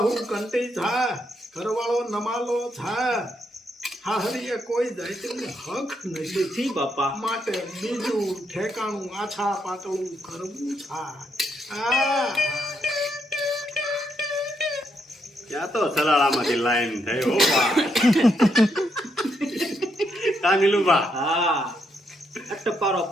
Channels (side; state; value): both; normal; correlation 0.77